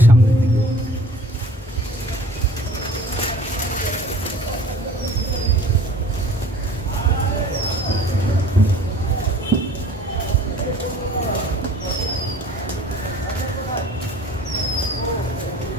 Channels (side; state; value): both; normal; correlation 0.49